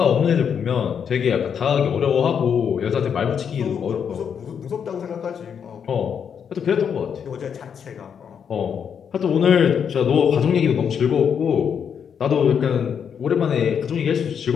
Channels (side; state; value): right; quieter; 7.5 dB